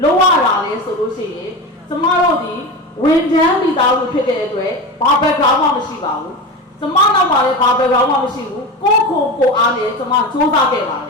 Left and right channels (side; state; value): both; normal; correlation 0.25